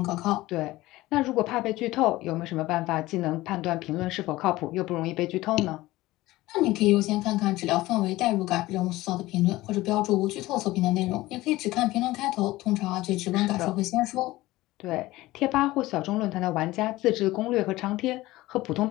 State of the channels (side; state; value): right; quieter; 18.1 dB